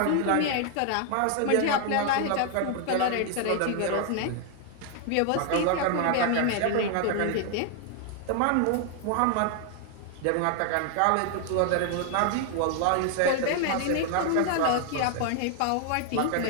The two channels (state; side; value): different; both; correlation 0.00